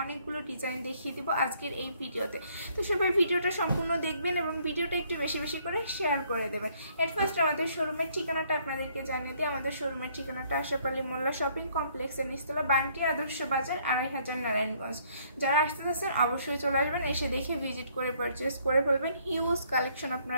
ডিজাইন দেখিয়ে দিব আজকের এই ভিডিওতে। তো সবাই ভিডিওটা সম্পূর্ণ দেখবেন এবং ভিডিওটা একটু বেশি বেশি করে শেয়ার করে দেবেন। এট ফার্স্ট আমাদের শোরুমের ঠিকানাটা আপনাদেরকে জানিয়ে দিই। আমাদের শোরুমের ঠিকানাটা আশরাফ আলী মোল্লা শপিং কমপ্লেক্সের নিচতলা, বান্টি আদর্শ বাজার, 2500 নারায়ণগঞ্জ। যারা আসতে চাচ্ছেন অবশ্যই চলে আসবেন, এসে দেখে ভিজিট করে পারচেস করে ফেলবেন। হিউজ কালেকশন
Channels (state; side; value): inverted; both; correlation -0.65